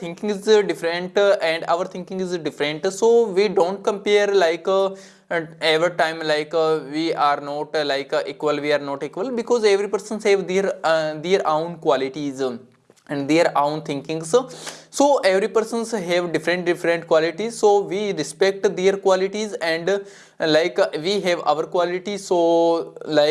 is different, and our thinking is different. So we don't compare every time we are not equal, we are not equal, because every person have their own qualities, and their own thinking. So every persons have different qualities, so we respect their qualities, and we have our qualities. So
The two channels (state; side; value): identical; both; correlation 1.00